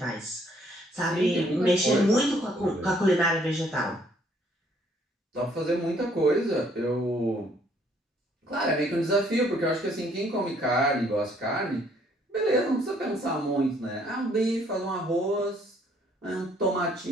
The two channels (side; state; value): both; normal; correlation 0.64